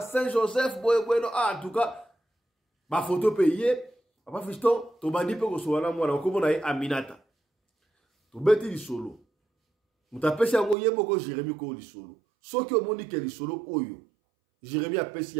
bueno en tout cas ba photo payé papa fiston to bandi pe ko so wana mwana ko mona Aminata to beti li solo mutapesi yango yembo ko Jérémie ko li solo soki omoni ke li solo oyo Jérémie apesi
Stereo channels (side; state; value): left; drops out; at 10.8 s